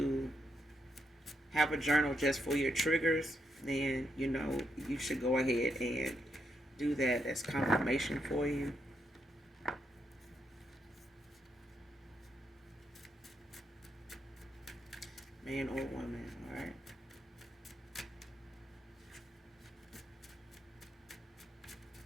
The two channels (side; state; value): both; normal; correlation 0.80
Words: have a journal just for your triggers, then you should go ahead and do that. That's confirmation for you. Man or woman, all right?